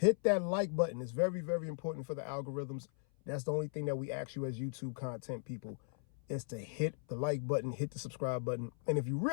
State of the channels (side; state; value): right; silent; 53 dB below the other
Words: that like button. It's very, very important for the algorithms. That's the only thing that we ask you as YouTube content people, is to hit the like button, hit the subscribe button. And if you